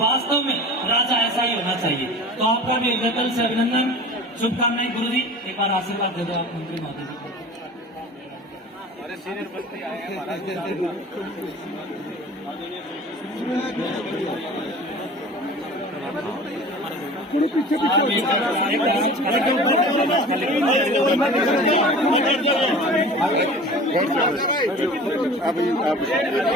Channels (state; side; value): normal; both; correlation 0.40